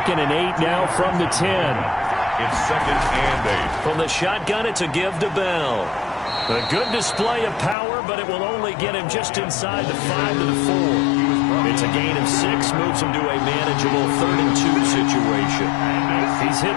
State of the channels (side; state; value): right; drops out; at 7.8 s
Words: and 8 now from the 10. It's 2nd and 8. From the shotgun, it's a give to Bell. A good display of power, but it will only get him just inside the 5 to the 4. It's a gain of 6, moves him to a manageable 3rd and 2 situation. He's hit